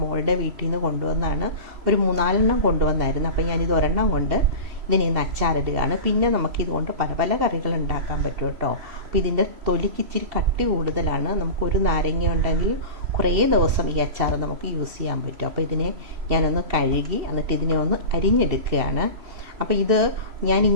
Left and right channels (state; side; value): late; left; 3.0 ms